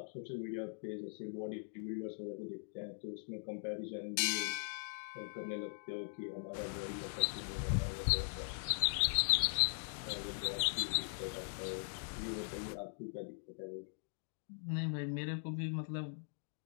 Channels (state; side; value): silent; right; digital silence